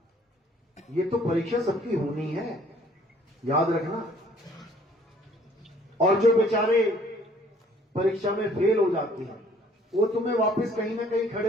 ये तो परीक्षा सबकी होनी है, याद रखना। और जो बेचारे परीक्षा में फेल हो जाते हैं वो तुम्हें वापस कहीं ना कहीं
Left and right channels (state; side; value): normal; both; correlation 0.58